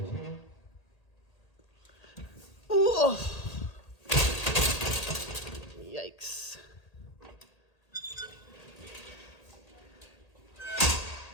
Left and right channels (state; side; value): late; right; 1.8 ms